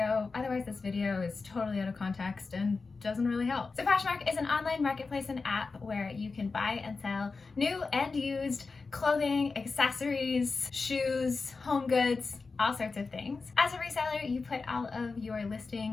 Otherwise, this video is totally out of context and doesn't really help. So Poshmark is an online marketplace and app where you can buy and sell new and used clothing, accessories, shoes, home goods, all sorts of things. As a reseller, you put all of your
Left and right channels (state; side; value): quieter; right; 4.3 dB